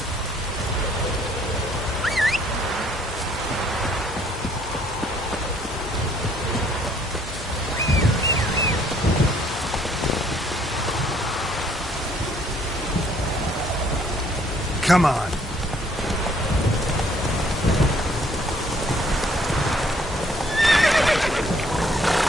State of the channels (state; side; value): normal; both; correlation 0.63